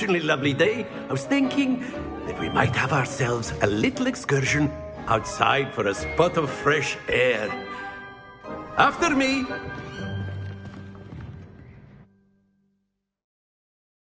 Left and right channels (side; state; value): both; identical; correlation 1.00